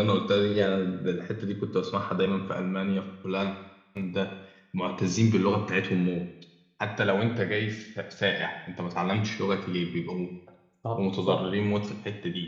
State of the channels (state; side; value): identical; both; correlation 1.00